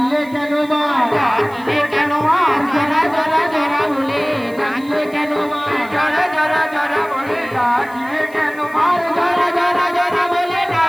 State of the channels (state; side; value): noise; right; hiss, 25 dB below the sound